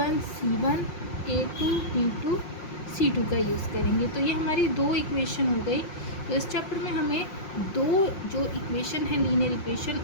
c1 a2 b2 c2 का यूज़ करेंगे। तो ये हमारी दो इक्वेशन हो गई। तो इस चैप्टर में हमें दो जो इक्वेशन है लीनियर इक्वेशन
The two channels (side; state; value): right; late; 5.6 ms